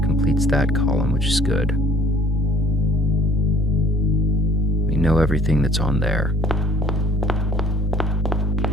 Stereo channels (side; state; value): both; normal; correlation 0.57